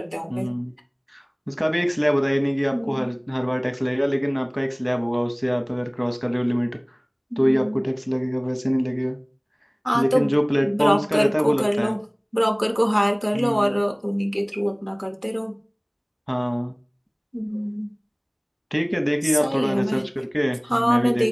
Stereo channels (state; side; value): identical; both; correlation 1.00